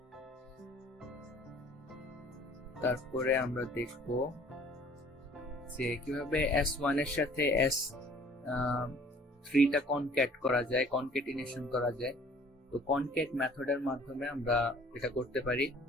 তারপরে আমরা দেখব যে কিভাবে s1 এর সাথে s3 টা কনক্যাট করা যায়, কনক্যাটিনেশন করা যায়। তো কনক্যাট মেথডের মাধ্যমে আমরা এটা করতে পারি।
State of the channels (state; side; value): normal; both; correlation 0.53